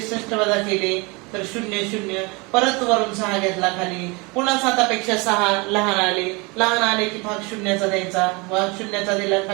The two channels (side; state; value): left; quieter; 27.6 dB